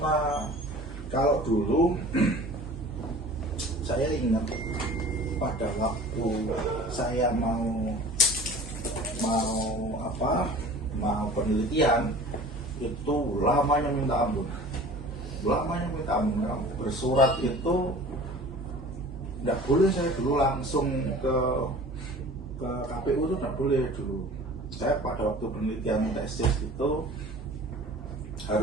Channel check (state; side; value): normal; both; correlation 0.43